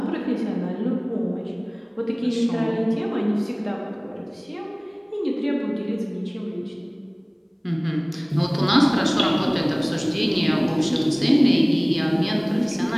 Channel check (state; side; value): identical; both; correlation 1.00